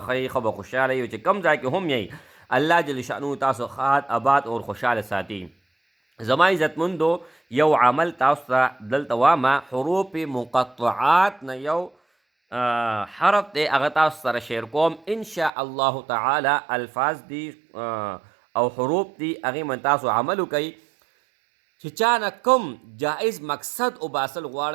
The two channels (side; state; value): left; drops out; at 15.5 s